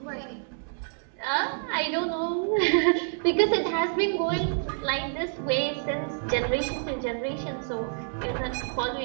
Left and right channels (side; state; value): left; silent; 59 dB below the other